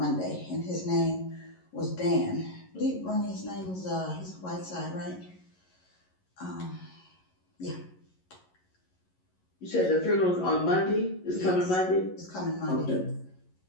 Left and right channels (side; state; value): right; late; 11 ms